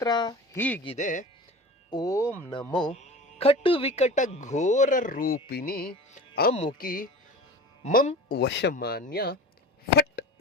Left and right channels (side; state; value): both; normal; correlation 0.36